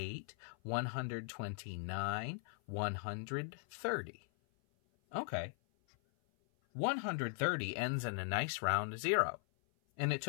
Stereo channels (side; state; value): right; silent; 52 dB below the other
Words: 129, 130. Okay. 130 ends in a nice round 0. And it